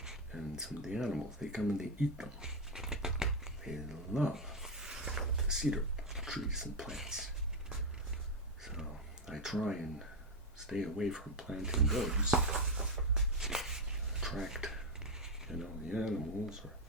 and some of the animals, they come and they eat them. They love the cedar trees and plants. So I try and stay away from planting those. Attract, the animals.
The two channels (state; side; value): normal; both; correlation 0.06